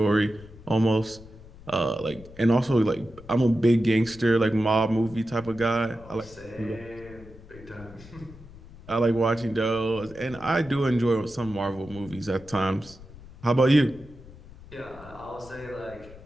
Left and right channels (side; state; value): left; noise; rumble, 19 dB below the sound